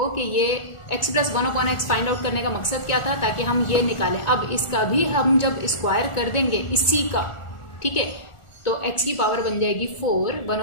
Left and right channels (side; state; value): right; late; 1.4 ms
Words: कि ये x plus 1/x find out करने का मकसद क्या था, ताकि हम ये निकालें। अब इसका भी हम जब स्क्वायर कर देंगे इसी का, ठीक है, तो x की पावर बन जाएगी 4,